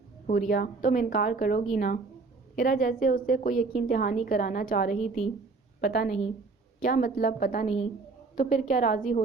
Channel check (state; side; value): quieter; left; 4.1 dB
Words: حوریہ، تم انکار کرو گی نا؟ ہیرا جیسے اس سے کوئی یقین دہانی کرانا چاہ رہی تھی۔ پتہ نہیں۔ کیا مطلب پتہ نہیں؟ تو پھر کیا راضی